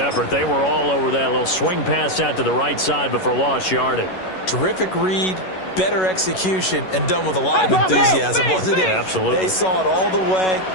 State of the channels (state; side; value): late; right; 11 ms